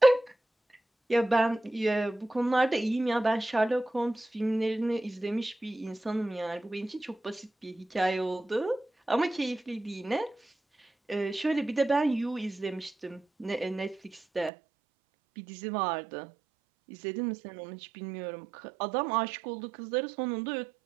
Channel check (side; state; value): left; drops out; at 14.5 s